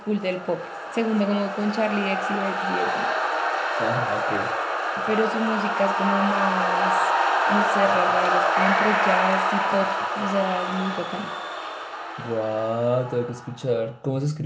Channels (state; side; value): identical; both; correlation 1.00